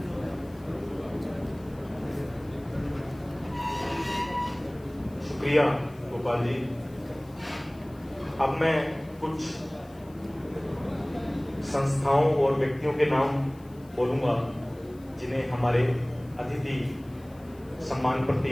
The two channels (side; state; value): left; noise; hiss, 28 dB below the sound